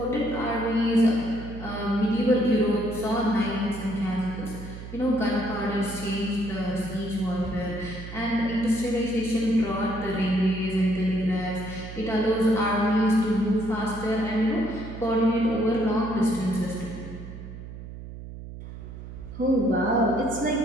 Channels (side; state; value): right; noise; hum, 12 dB below the sound